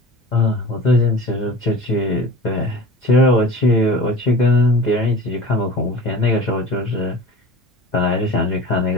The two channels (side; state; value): both; normal; correlation 0.38